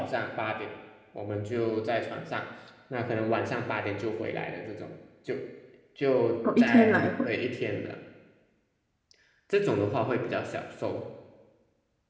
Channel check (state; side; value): identical; both; correlation 1.00